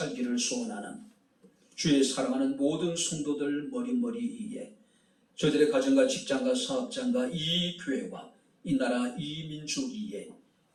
소원하는 주의 사랑하는 모든 성도들 머리머리 위에 저희들의 가정과 직장과 사업장과 이 교회와 이 나라 이 민족 위에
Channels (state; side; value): identical; both; correlation 1.00